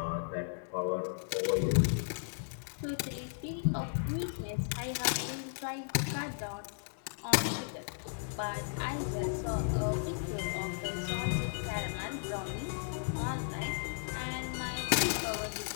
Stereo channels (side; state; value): right; silent; 54 dB below the other